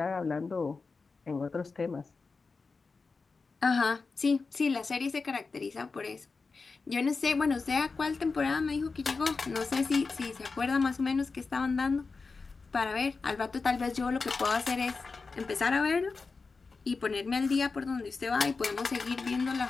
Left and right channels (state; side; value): quieter; right; 4.3 dB